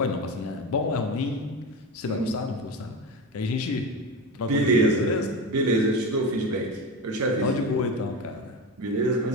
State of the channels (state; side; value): normal; both; correlation 0.22